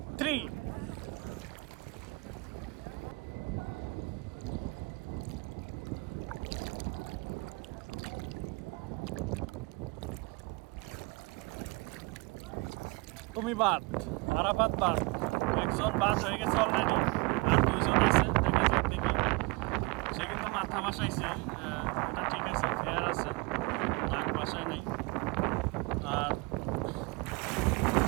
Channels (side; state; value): left; quieter; 27.2 dB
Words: 3। তুমি বাদ, আরাফাত বাদ, একজন বাদ হয়ে গেছে অলরেডি, আর দুইজন আছে। দেখা যাক দেখি। সে কিন্তু মাথা বাসাইছে, এটা ঠিক আছে, ফেয়ার আছে, নাক বাসায় নাই। আর